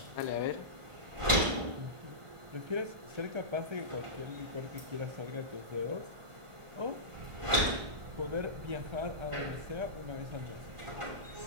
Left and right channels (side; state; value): left; late; 1.4 ms